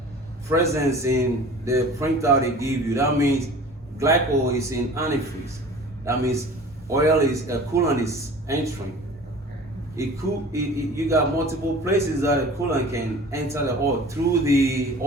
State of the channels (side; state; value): both; normal; correlation 0.42